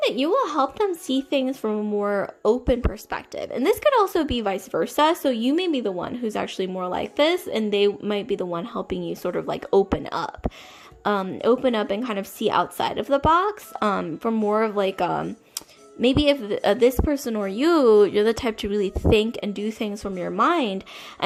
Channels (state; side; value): identical; both; correlation 1.00